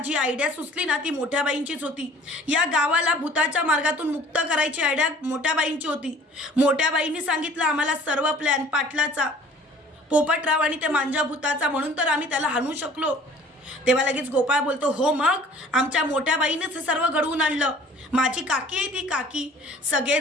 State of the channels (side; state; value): both; normal; correlation 0.50